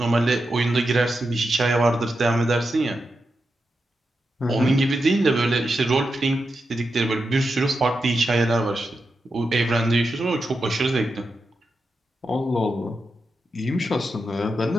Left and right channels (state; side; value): normal; both; correlation 0.88